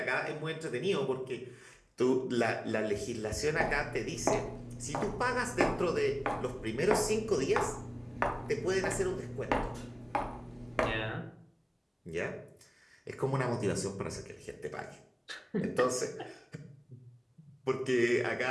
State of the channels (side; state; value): both; identical; correlation 1.00